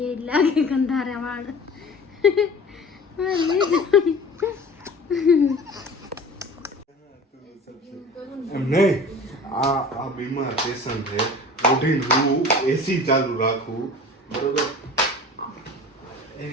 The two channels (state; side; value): normal; both; correlation 0.40